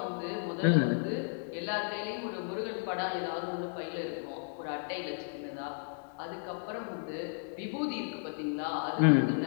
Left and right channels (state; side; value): silent; right; digital silence